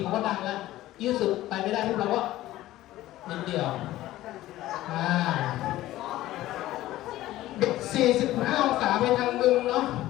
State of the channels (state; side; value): quieter; right; 15.4 dB